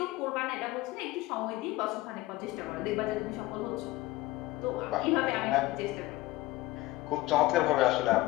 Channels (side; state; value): right; quieter; 18.6 dB